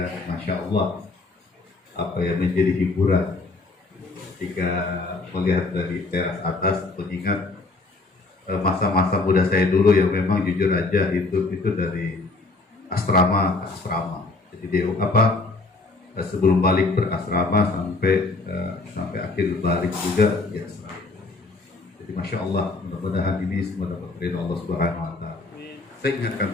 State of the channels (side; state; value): right; quieter; 3.5 dB